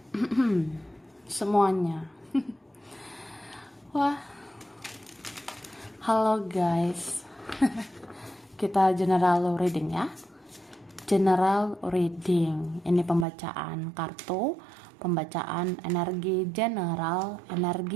semuanya. Wah, halo guys. Kita general reading ya. General reading. Ini pembacaan kartu, pembacaan energi general,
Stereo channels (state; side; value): drops out; left; at 13.2 s